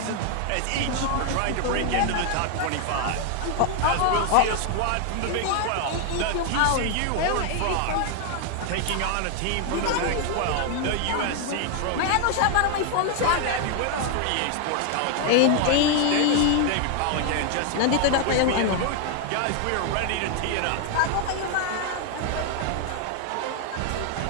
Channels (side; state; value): both; different; correlation 0.00